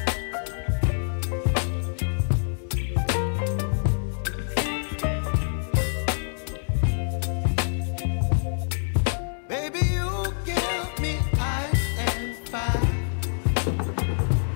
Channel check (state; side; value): silent; right; digital silence